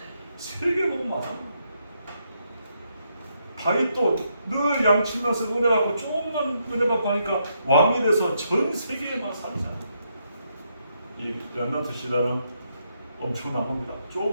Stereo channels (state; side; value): inverted; both; correlation -0.78